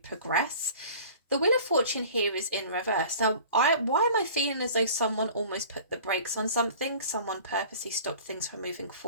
The Wheel of Fortune here is in reverse. Now, why am I feeling as though someone almost put the brakes on something? Someone purposely stopped things from moving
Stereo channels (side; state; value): both; inverted; correlation -0.44